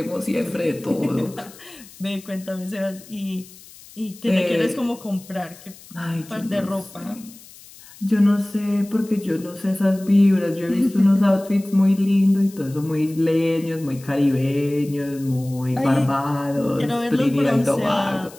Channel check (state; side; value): noise; left; hiss, 21 dB below the sound